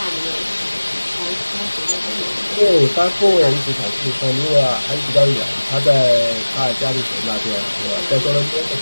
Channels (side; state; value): both; inverted; correlation -1.00